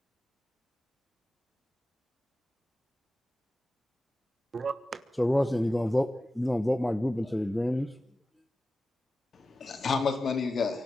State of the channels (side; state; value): both; normal; correlation 0.94